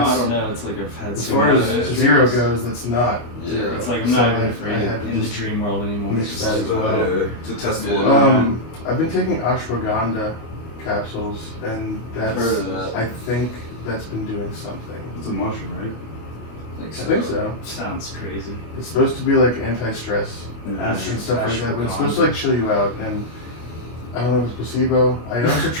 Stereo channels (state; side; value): late; right; 25 ms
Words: don't know. It's like I've had As so far many as of those zero dreams. goes, that's not. Yeah. It's like I'm So not I even afraid had to in the just dream world anymore. mix It's that just as well. To test the Yeah. limit. I've been taking ashwagandha capsules, and I've that's. heard of that. I think that's been doing something. It's a mushroom, right? I think so. sounds crazy. It's supposed to be like anti-stress That's- and stuff like that, but it's ashwagandha. supposed to like chill you out. And I don't know if it's placebo. I also